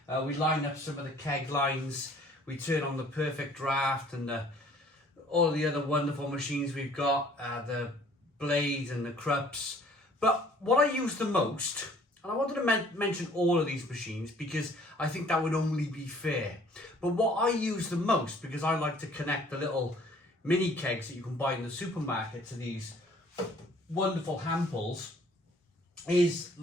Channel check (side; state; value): both; normal; correlation 0.56